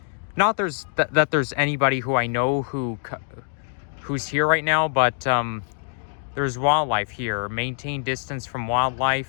Not that there's anybody who I know who's here right now, but there's wildlife here. Maintain distance from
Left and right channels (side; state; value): right; silent; digital silence